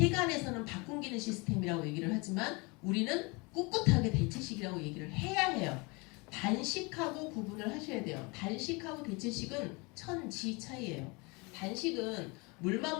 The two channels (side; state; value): right; quieter; 27.9 dB